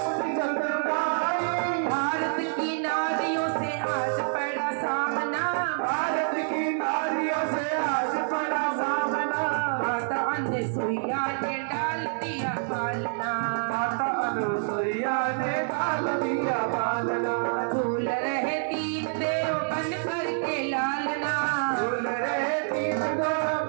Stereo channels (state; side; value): silent; left; 60 dB below the other